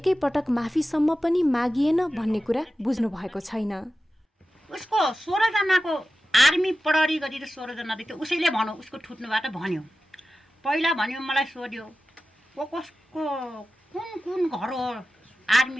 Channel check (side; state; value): both; normal; correlation 0.94